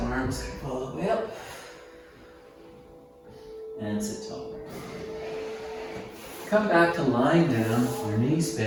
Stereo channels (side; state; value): both; identical; correlation 1.00